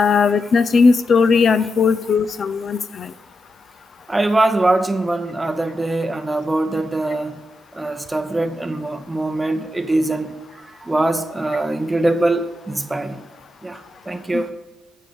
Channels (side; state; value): both; normal; correlation 0.87